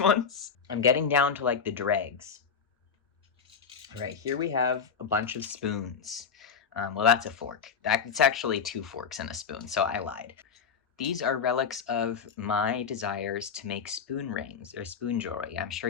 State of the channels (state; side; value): quieter; right; 6.3 dB